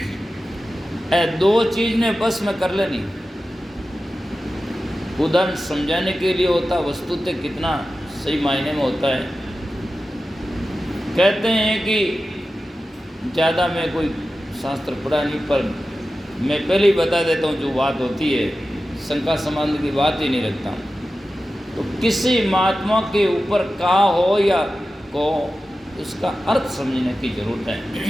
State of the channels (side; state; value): both; normal; correlation 0.93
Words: दो चीज ने बस में कर लेनी। उदाहरण समझाने के लिए होता, वस्तुतः कितना सही मायने में होता है। कहते हैं कि ज़्यादा मैं कोई शास्त्र पढ़ा नहीं, पर मैं पहले ही बता देता हूँ जो बात होती है, शंका संबंध की बात ही नहीं रखता। तो किसी महात्मा के ऊपर कहा हो या को, उसका अर्थ समझने की जरूरत है।